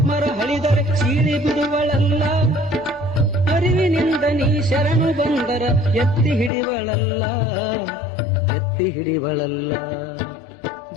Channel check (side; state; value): right; drops out; at 6.5 s